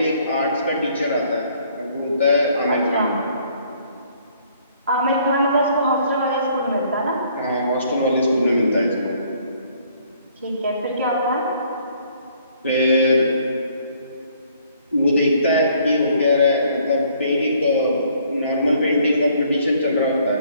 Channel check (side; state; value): both; inverted; correlation -0.63